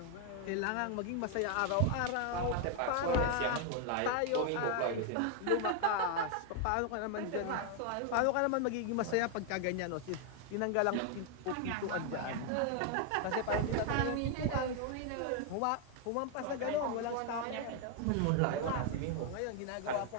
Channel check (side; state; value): both; different; correlation 0.00